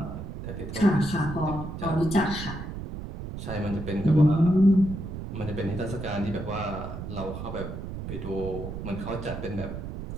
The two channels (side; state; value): right; noise; rumble, 8 dB below the sound